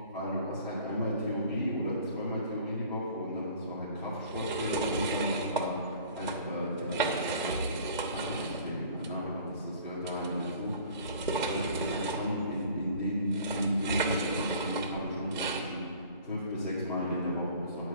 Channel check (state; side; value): inverted; both; correlation -0.49